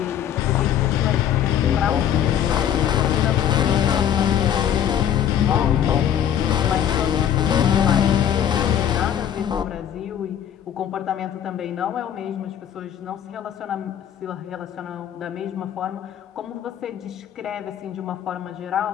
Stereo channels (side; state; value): right; quieter; 9.9 dB